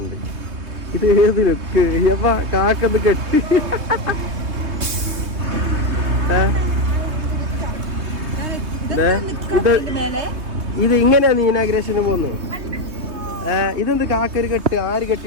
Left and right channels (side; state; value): left; late; 3.2 ms